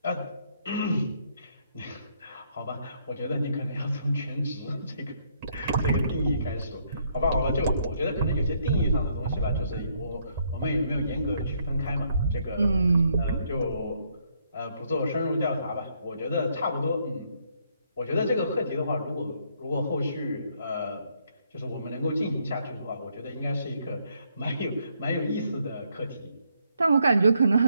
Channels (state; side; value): inverted; both; correlation -0.71